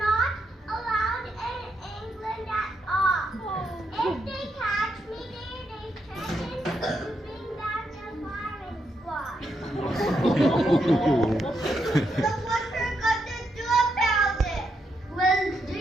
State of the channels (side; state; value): both; normal; correlation 0.80